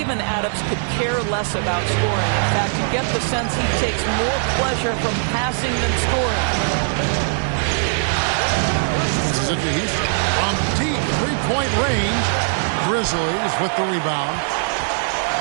Adams could care less about scoring. In fact, you get the sense he takes more pleasure from passing than scoring. This is it to Houston. From deep three-point range, Grizzlies with the rebound.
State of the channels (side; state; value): left; silent; digital silence